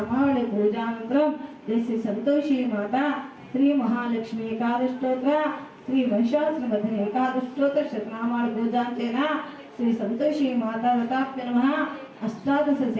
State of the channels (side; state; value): both; identical; correlation 1.00